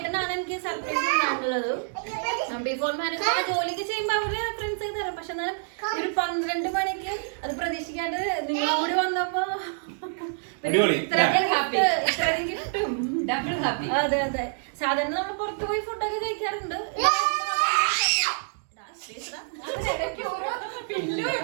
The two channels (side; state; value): left; silent; digital silence